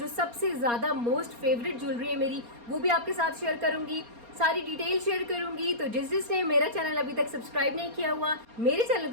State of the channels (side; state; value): left; late; 4.3 ms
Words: सबसे ज़्यादा मोस्ट फेवरेट ज्वेलरी है मेरी, वो भी आपके साथ शेयर करूंगी, सारी डिटेल शेयर करूंगी। तो जिसने मेरा चैनल अभी तक सब्सक्राइब नहीं किया हुआ, मेरे चैनल